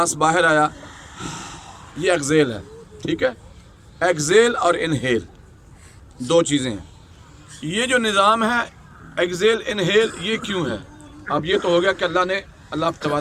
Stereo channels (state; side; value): identical; both; correlation 1.00